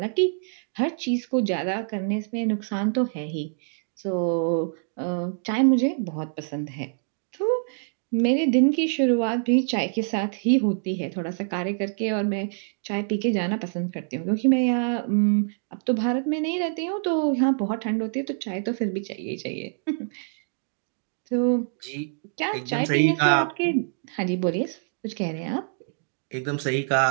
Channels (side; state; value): left; silent; digital silence